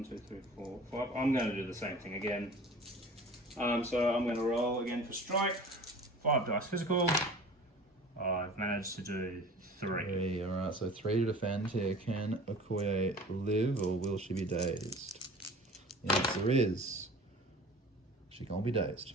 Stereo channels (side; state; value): both; normal; correlation 0.42